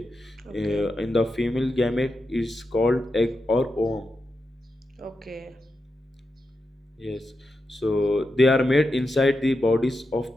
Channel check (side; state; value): both; normal; correlation 0.88